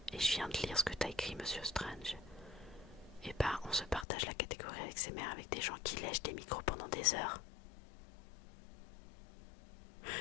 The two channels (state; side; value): drops out; right; at 4.0 s